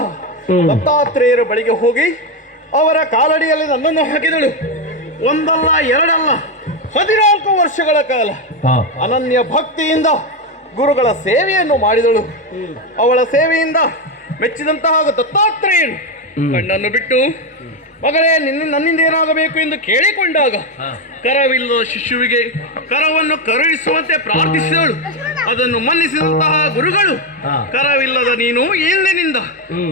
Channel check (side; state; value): both; normal; correlation 0.09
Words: ದತ್ತಾತ್ರೇಯರ ಬಳಿಗೆ ಹೋಗಿ ಅವರ ಕಾಲಡಿಯಲ್ಲಿ ನನ್ನನ್ನು ಹಾಕಿದಳು. ಒಂದಲ್ಲ ಎರಡಲ್ಲ 14 ವರ್ಷಗಳ ಕಾಲ ಅನನ್ಯ ಭಕ್ತಿಯಿಂದ ಗುರುಗಳ ಸೇವೆಯನ್ನು ಮಾಡಿದಳು. ಅವಳ ಸೇವೆಯಿಂದ ಮೆಚ್ಚಿದಂತಹ ದತ್ತಾತ್ರೇಯನು ಕಣ್ಣನ್ನು ಬಿಟ್ಟು ಮಗಳೇ ನನ್ನಿಂದ ಏನಾಗಬೇಕು ಎಂದು ಕೇಳಿಕೊಂಡಾಗ ಕರವಿಲ್ಲದ ಶಿಶುವಿಗೆ ಕರವನ್ನು ಕರುಣಿಸುವಂತೆ ಪ್ರಾರ್ಥಿಸಿದಳು. ಅದನ್ನು ಮನ್ನಿಸಿದಂತಹ ಗುರುಗಳು ಕರವಿಲ್ಲದ ನೀನು ಇಂದಿನಿಂದ